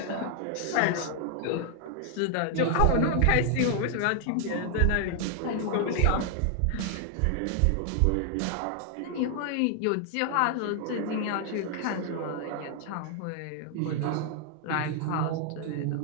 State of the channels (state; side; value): different; both; correlation 0.00